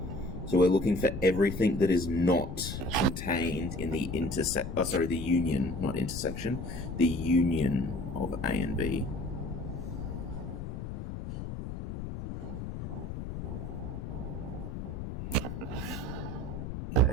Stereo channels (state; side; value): noise; left; rumble, 7 dB below the sound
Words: So we're looking for everything that is not contained in the the union, not intersection, the union of A and B.